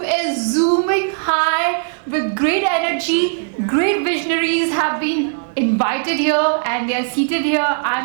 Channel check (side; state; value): left; silent; digital silence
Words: is zooming high with great energy. Great visionaries have been invited here and they are seated here.